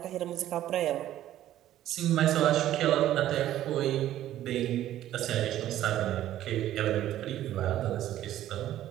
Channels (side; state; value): left; quieter; 12.9 dB